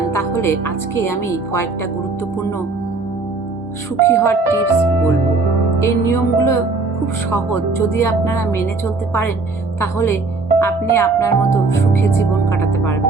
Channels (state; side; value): quieter; left; 3.8 dB